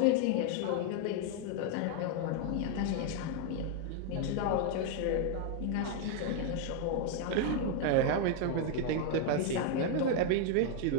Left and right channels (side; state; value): both; different; correlation 0.00